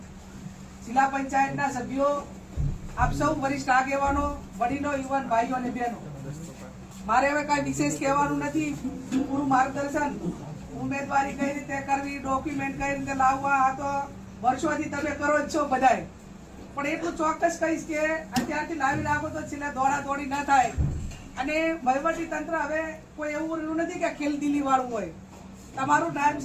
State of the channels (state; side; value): identical; both; correlation 1.00